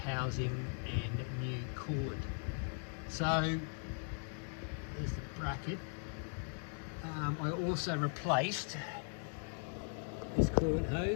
and new coolant. So there's the bracket. I also replaced this coolant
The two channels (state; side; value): silent; right; 52 dB below the other